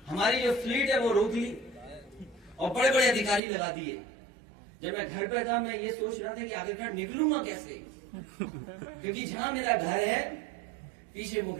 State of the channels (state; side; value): drops out; left; at 3.4 s